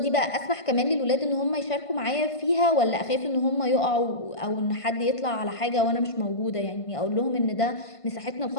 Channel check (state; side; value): late; right; 1.5 ms